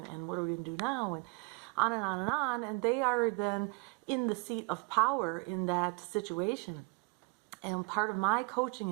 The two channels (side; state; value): left; quieter; 31.8 dB